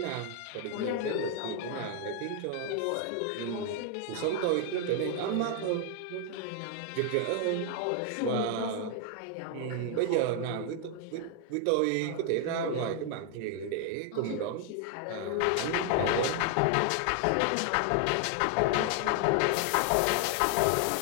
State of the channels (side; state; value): both; different; correlation 0.00